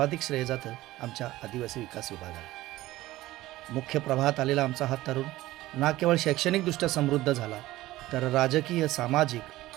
श्रेय जातं आमच्या आदिवासी विकास विभागाला. मुख्य प्रवाहात आलेला आमचा हा तरुण ना केवळ शैक्षणिकदृष्ट्या समृद्ध झाला, तर राजकीय, सामाजिक,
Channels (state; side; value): quieter; left; 16.8 dB